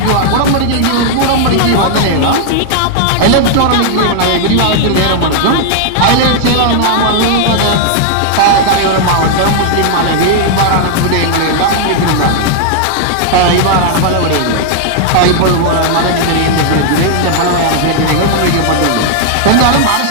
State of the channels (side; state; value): both; different; correlation 0.00